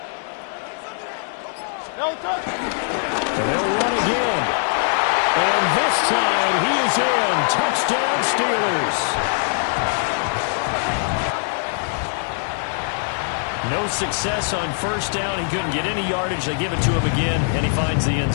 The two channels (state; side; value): silent; right; 64 dB below the other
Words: And they'll run again. And this time he is in. Touchdown Steelers. No success on 1st down. He couldn't get any yardage. They give it to him again, and he finds the end